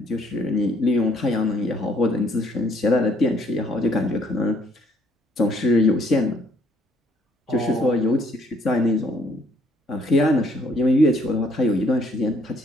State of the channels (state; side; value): normal; both; correlation 0.65